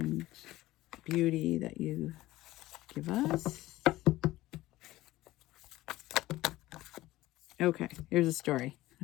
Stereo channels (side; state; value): right; quieter; 17.1 dB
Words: beauty that you give us. Okay, here's a story.